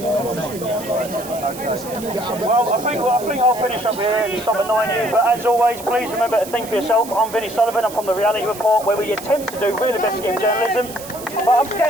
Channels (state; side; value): noise; right; hiss, 14 dB below the sound